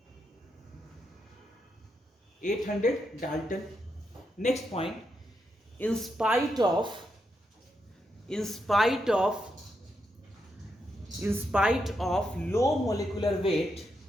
800 Dalton. Next point, in spite of low molecular weight,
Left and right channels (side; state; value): both; normal; correlation 0.83